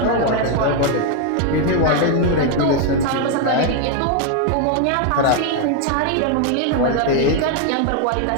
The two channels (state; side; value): different; both; correlation 0.01